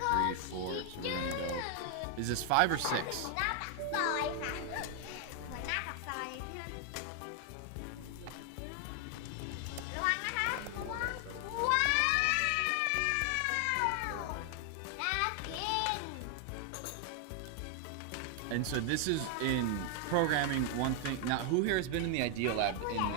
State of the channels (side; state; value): both; different; correlation 0.00